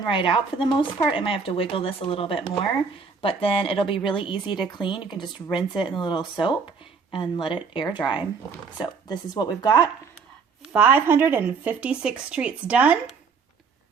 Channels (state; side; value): quieter; left; 5.3 dB